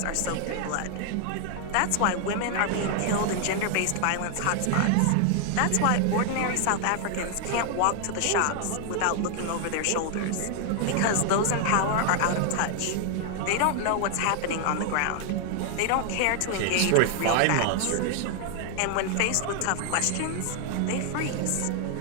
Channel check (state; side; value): different; both; correlation 0.00